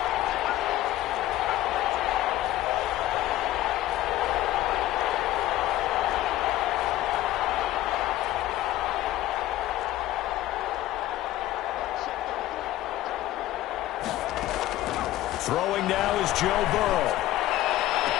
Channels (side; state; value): right; quieter; 15.0 dB